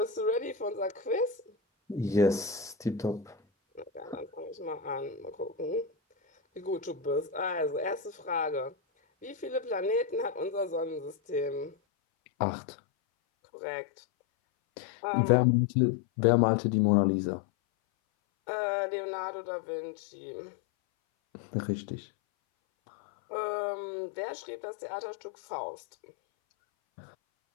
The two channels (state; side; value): drops out; right; at 11.8 s